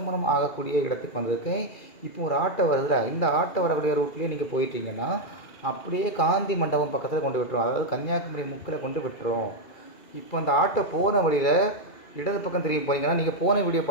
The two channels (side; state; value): right; late; 2.3 ms